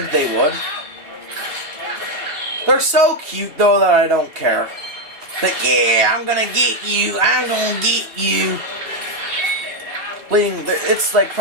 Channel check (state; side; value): late; left; 2.7 ms